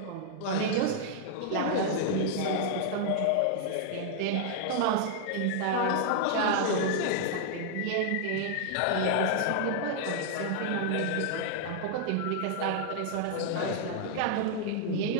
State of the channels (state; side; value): different; both; correlation -0.01